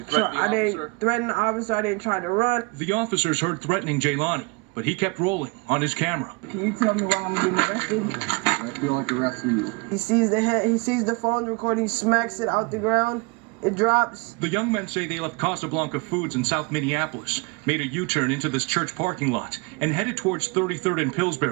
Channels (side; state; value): left; quieter; 29.4 dB